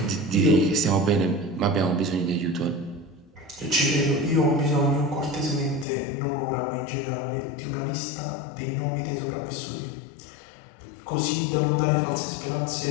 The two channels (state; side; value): drops out; right; at 5.9 s